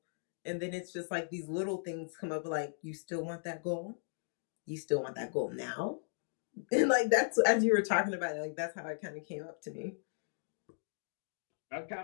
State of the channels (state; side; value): silent; right; digital silence